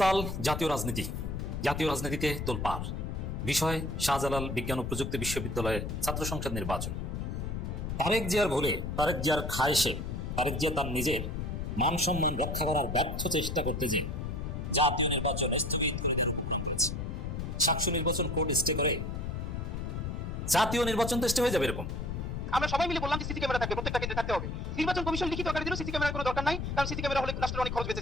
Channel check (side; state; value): left; noise; rumble, 4 dB below the sound